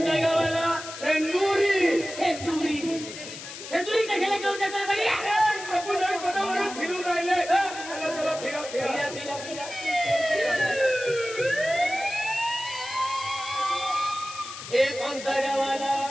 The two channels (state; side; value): noise; left; hiss, 11 dB below the sound